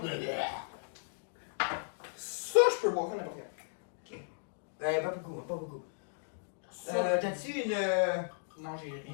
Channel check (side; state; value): right; silent; digital silence